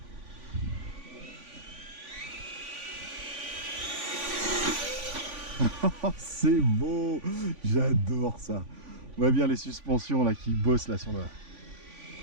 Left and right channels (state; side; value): late; left; 3.5 ms